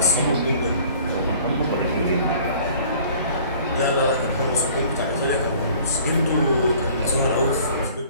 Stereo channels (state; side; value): inverted; both; correlation -0.51